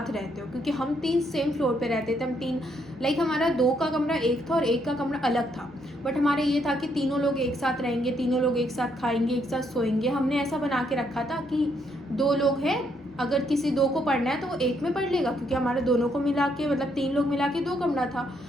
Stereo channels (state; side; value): normal; both; correlation 0.73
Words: रहते हो, क्योंकि हम 3 सेम फ्लोर पे रहते थे, हम 3 लाइक हमारा 2 का कमरा एक था और 1 का कमरा अलग था। बट हमारा ये था कि तीनों लोग एक साथ रहेंगे, तीनों लोग एक साथ खाएंगे, एक साथ सोएंगे। हमने ऐसा बना के रखा था कि 2 लोग हैं, अगर किसी 2 को पढ़ना है तो वो 1 में पढ़ लेगा, क्योंकि हमारे दोनों को मिला के मतलब 3 लोग मिला के 2 कमरा था